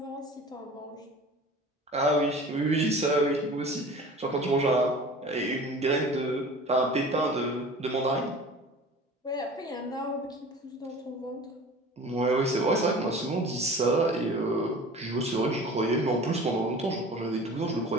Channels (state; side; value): normal; both; correlation 0.41